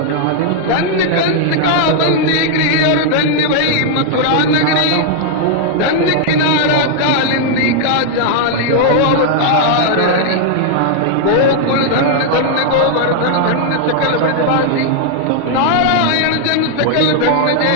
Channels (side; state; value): both; different; correlation -0.01